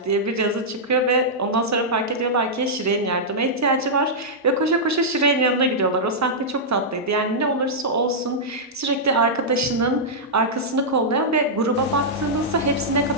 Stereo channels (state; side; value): normal; both; correlation -0.10